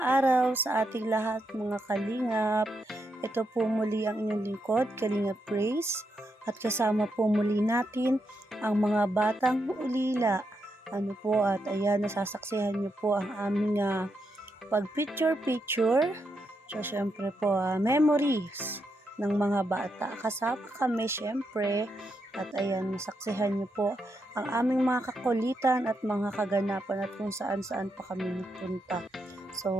araw sa ating lahat mga kalingap. Ito po muli ang inyong lingkod, Kalingap Grace. At kasama po muli natin ang mga batang ulila. At ayan, nasasaksihan niyo po ang aming pag-picture-picture. So, syempre po, memories ng mga bata. Kasama kami, syempre. At ayan, nasaksihan niyo po ang aming mga kakulitan at mga kaganapan at kung saan-saan pa kami nagpunta.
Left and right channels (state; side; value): normal; both; correlation 0.82